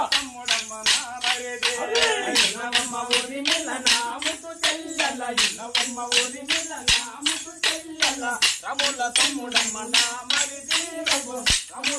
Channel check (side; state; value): both; identical; correlation 1.00